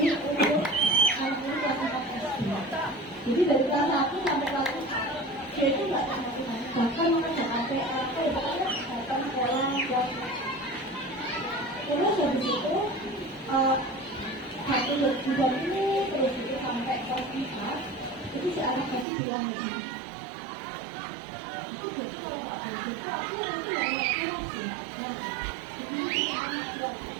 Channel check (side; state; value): left; drops out; at 19.1 s